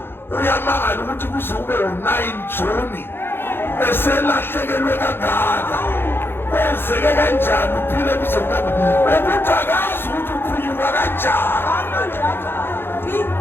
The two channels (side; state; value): right; late; 0.10 ms